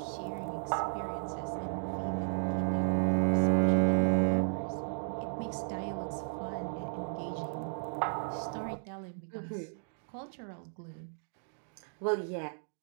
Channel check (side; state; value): left; silent; digital silence